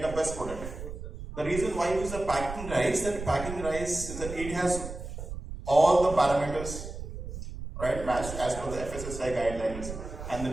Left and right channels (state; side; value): noise; right; rumble, 9 dB below the sound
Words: the best product. The reason why I use the packing rice, is that it has all the parameters, right, matched as per the FSSAI guidelines and the